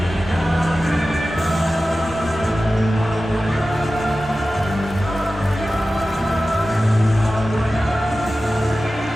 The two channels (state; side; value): normal; both; correlation 0.95